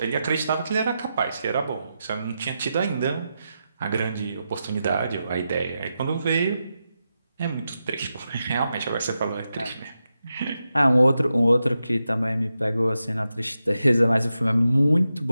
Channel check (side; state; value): both; inverted; correlation -0.89